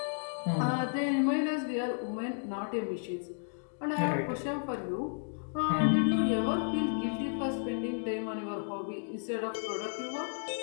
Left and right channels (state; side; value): silent; right; digital silence